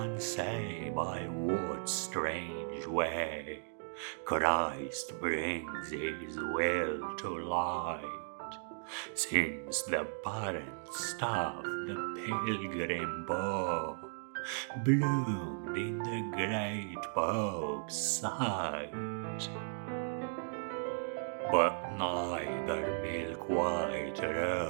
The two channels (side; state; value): left; silent; digital silence